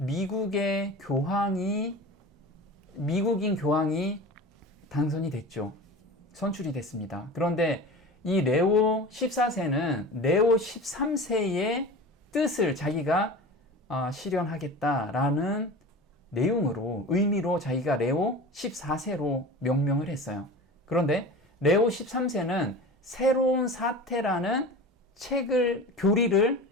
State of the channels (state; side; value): normal; both; correlation 0.34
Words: 교황이 당선이 됐죠. 선출이 됐습니다. 그런데 이 레오 14세는 레오 13세의 뜻을 자기가 실현하겠다라는 내용으로 의미로 자기가 레오 14세로 명명을 했어요. 그런데 레오 13세는 새로운 사태라는 교리를